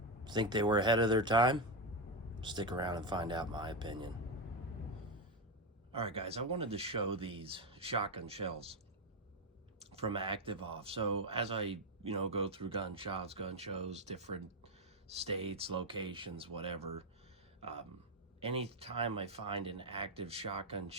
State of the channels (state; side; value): normal; both; correlation 0.08